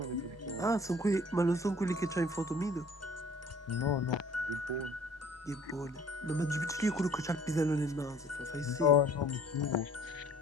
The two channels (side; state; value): both; normal; correlation 0.53